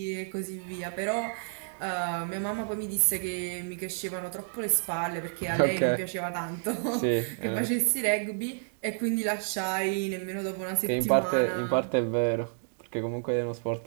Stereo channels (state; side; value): silent; left; digital silence